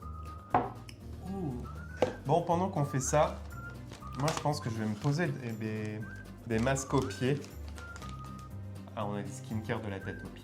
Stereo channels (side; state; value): both; identical; correlation 1.00